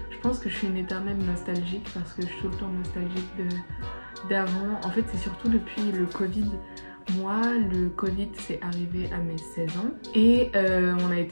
je pense que je suis une éternelle nostalgique parce que je suis tout le temps nostalgique d'avant. En fait, c'est surtout depuis le Covid. Moi, le Covid c'est arrivé à mes 16 ans et on a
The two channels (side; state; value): both; inverted; correlation -1.00